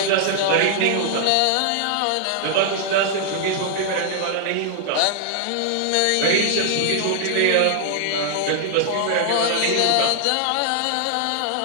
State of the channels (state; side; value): different; both; correlation -0.01